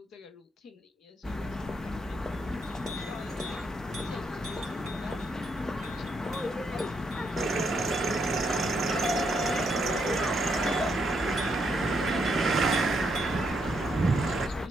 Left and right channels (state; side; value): normal; both; correlation 0.77